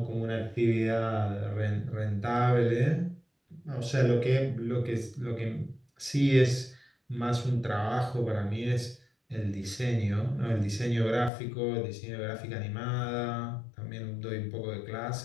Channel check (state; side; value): drops out; right; at 11.3 s